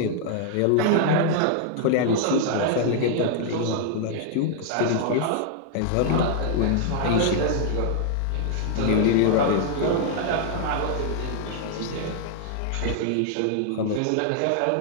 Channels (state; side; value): different; both; correlation 0.00